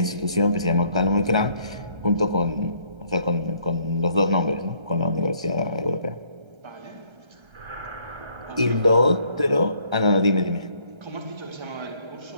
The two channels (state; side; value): late; left; 1.3 ms